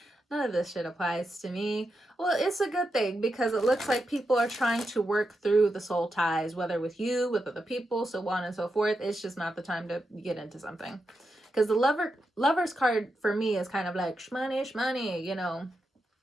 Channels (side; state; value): both; normal; correlation 0.87